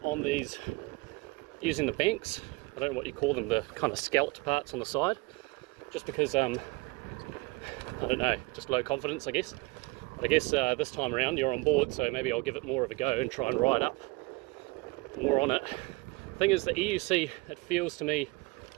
on these using the banks. I don't know what you call them, the kind of scalloped parts on the side, just because I don't know, just low confidence I guess. But I guess this time around you're on board, so maybe I'll give it more of a go and try and ride up more on it. Thing is, the EUC, it feels to me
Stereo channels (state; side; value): quieter; left; 24.5 dB